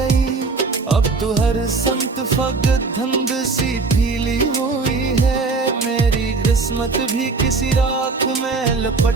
अब तो हर संत फगत धंध सी फीली हुई है, मेरी किस्मत भी किसी राख में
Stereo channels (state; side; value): quieter; left; 4.1 dB